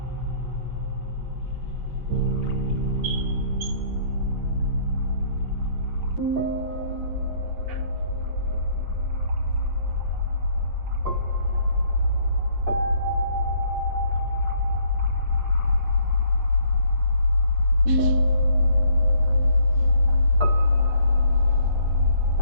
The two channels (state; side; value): late; left; 8.4 ms